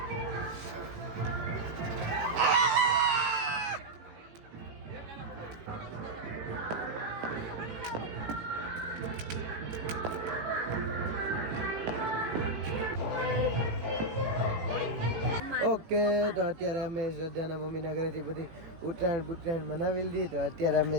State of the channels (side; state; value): left; late; 18 ms